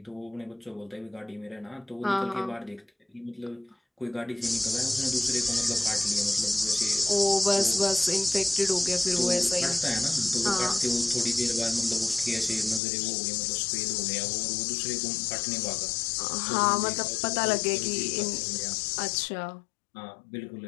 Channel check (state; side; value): drops out; right; at 12.8 s